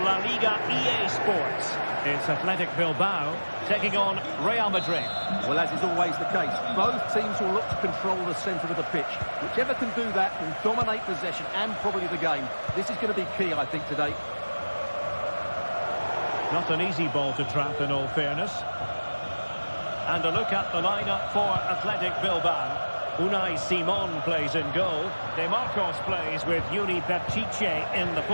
La Liga EA Sports. It's Athletic Bilbao taking on Real Madrid. Well, as is always the case, both teams will look to control the centre of the pitch. Whichever can do that will dominate possession and probably the game. This is going to be key, I think, today. Not an easy ball to trap, in all fairness. And a look at the lineup for Athletic Bilbao. Unai Simon plays in goal. De Marcos plays with Uni Baptiche in the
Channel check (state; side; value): inverted; both; correlation -1.00